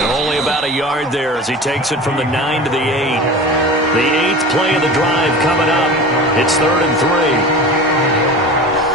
only about a yard there as he takes it from the 9 to the 8. The 8th play of the drive coming up. It's 3rd and 3.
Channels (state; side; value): normal; both; correlation 0.34